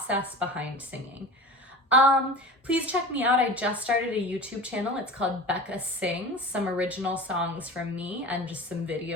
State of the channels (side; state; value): both; normal; correlation 0.33